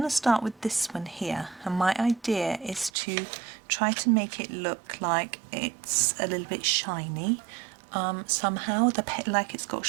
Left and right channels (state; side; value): drops out; left; at 2.9 s